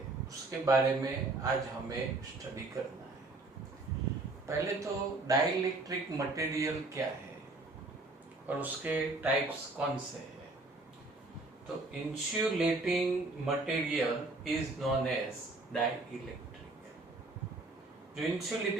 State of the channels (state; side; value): quieter; left; 3.1 dB